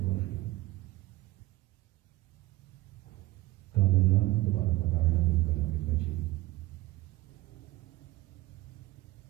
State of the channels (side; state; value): left; quieter; 18.2 dB